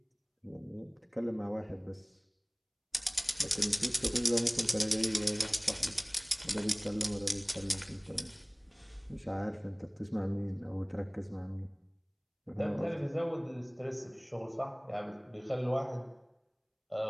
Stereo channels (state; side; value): identical; both; correlation 1.00